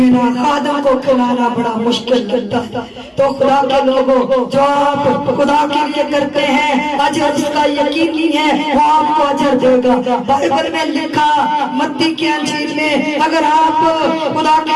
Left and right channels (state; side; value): identical; both; correlation 1.00